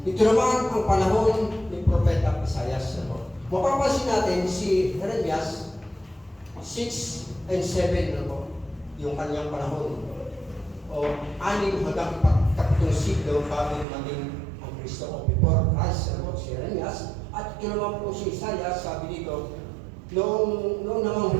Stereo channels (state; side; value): drops out; left; at 13.9 s